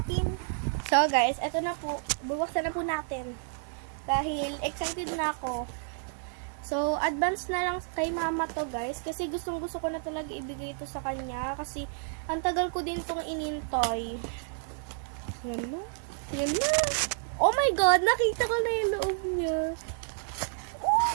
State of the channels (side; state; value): left; silent; 57 dB below the other